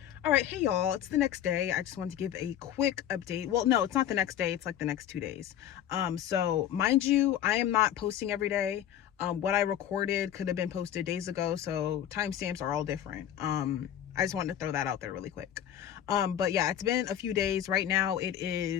All right, hey y'all, it's the next day. I just wanted to give a quick update. Well, no, it's not the next day, it's like the next 2 days. So mind you, I am not posting every day. What I recorded could have been posted days ago, so timestamps are all different. I just wanted to throw that out there really quick. But yeah, it's been a few days. Right now it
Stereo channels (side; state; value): right; quieter; 10.7 dB